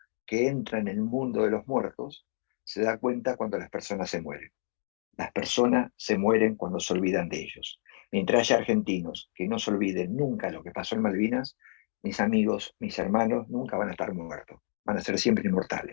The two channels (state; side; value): silent; right; digital silence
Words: que entra en el mundo de los muertos se da cuenta cuando las personas se mueren. Las personas se mueren cuando se olvidan de ellos. Mientras haya argentinos que no se olviden nunca lo que pasó en Malvinas, mis amigos, mis hermanos, nunca van a estar muertos. Van a ser siempre